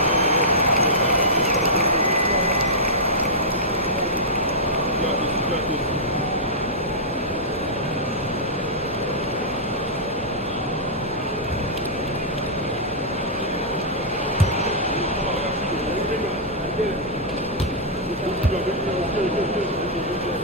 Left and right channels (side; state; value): both; normal; correlation -0.12